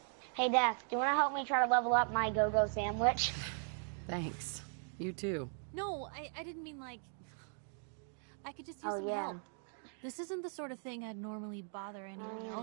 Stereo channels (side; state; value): left; silent; 52 dB below the other